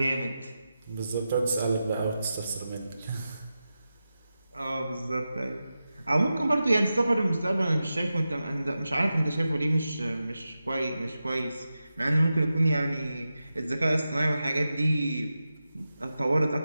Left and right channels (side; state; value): both; inverted; correlation -0.91